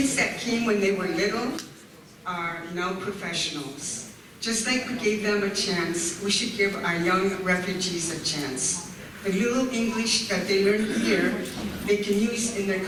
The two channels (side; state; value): both; identical; correlation 1.00